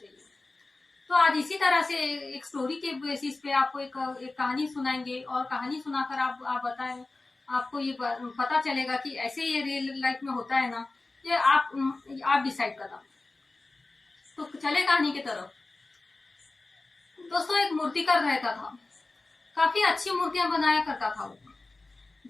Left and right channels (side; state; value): right; quieter; 3.3 dB